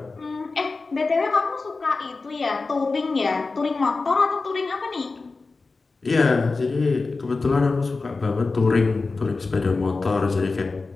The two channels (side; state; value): right; quieter; 3.9 dB